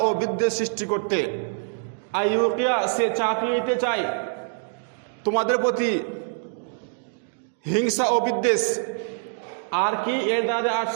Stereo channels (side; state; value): left; silent; digital silence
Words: ও বিদ্বেষ সৃষ্টি করতে। আইয়ুকিয়া সে চাপিয়ে দিতে চায় তোমাদের প্রতি হিংসা ও বিদ্বেষ। আর কি এর দ্বারা